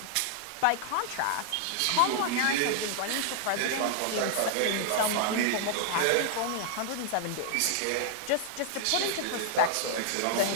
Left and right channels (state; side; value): different; both; correlation 0.00